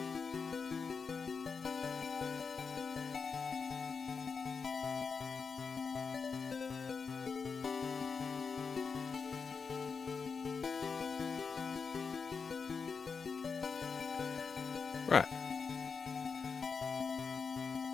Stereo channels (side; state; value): right; quieter; 5.4 dB